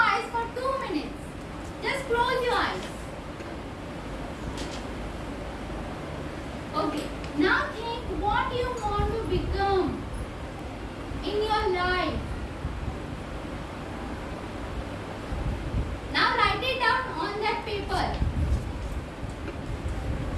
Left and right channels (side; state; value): both; identical; correlation 1.00